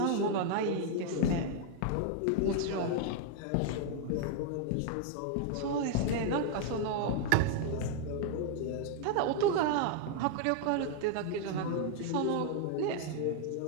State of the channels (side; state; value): both; different; correlation 0.00